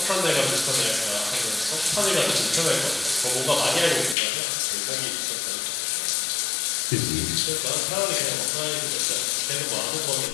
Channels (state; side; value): drops out; right; at 4.2 s